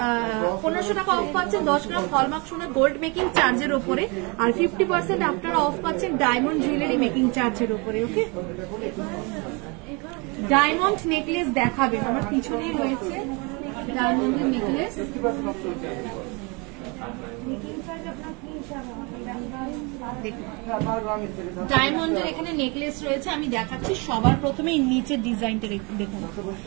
1500 টাকা অফ পাচ্ছেন 10 গ্রাম হলমার্ক সোনার গোল্ড মেকিং চার্জের উপরে, আর 50% আপনারা অফ পাচ্ছেন ডায়মন্ড জুয়েলারি মেকিং চার্জের উপরে। ওকে, ডায়মন্ড নেকলেস দেখাবেন, আমার পিছনেই রয়েছে ডায়মন্ডের নেকলেস। ডায়মন্ডের এখানে নেকলেস রয়েছে, আমি দেখাচ্ছি। সবার প্রথমে নিচের ডিজাইনটা দেখুন।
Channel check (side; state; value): left; quieter; 29.9 dB